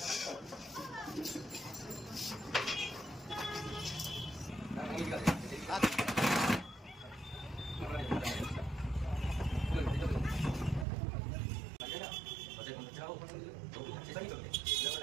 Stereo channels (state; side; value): drops out; left; at 10.9 s